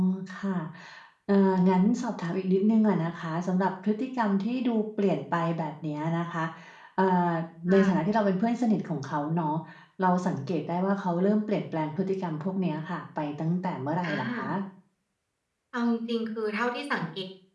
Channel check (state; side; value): identical; both; correlation 1.00